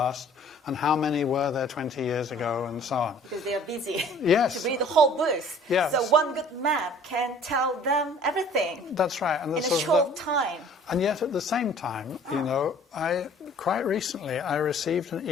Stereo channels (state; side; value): normal; both; correlation 0.52